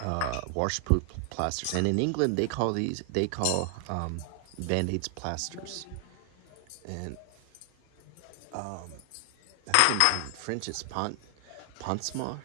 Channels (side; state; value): both; different; correlation 0.00